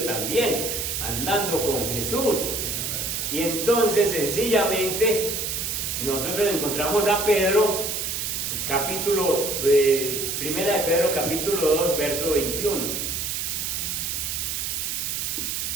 también, andando con Jesús, y entonces sencillamente nosotros encontramos a Pedro, primera de Pedro capítulo 2, verso 21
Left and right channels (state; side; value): noise; right; hiss, 2 dB below the sound